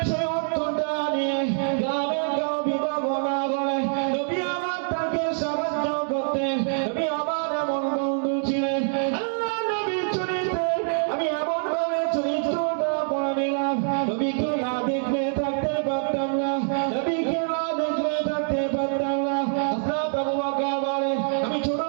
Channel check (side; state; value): left; silent; digital silence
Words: সেই অর্থটা নিয়ে গ্রামে কেউ বিবাহ না করে নবী আমার তাকে সাহায্য করতেন। নবী আমার এমন বন্ধু ছিলেন। আল্লাহ নবীর চরিত্রে আমি এমন ভাবে চরিত্রটা পড়ে নিলাম, নবীকে না দেখলে থাকতে পারতাম না, নবীকে না দেখলে থাকতে পারতাম না। হযরত আবু বকর বলেন আমি